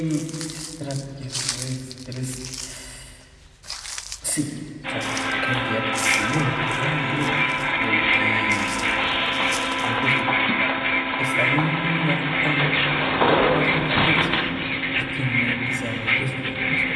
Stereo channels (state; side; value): identical; both; correlation 1.00